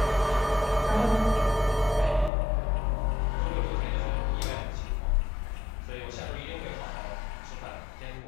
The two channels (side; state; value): right; drops out; at 2.3 s